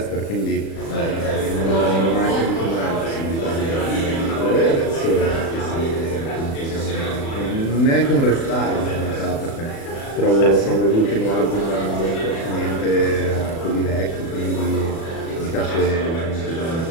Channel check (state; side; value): late; right; 36 ms